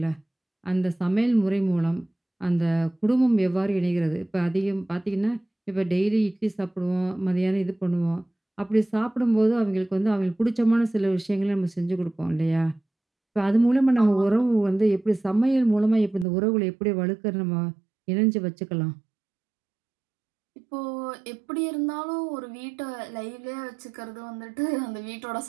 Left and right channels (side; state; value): left; drops out; at 16.2 s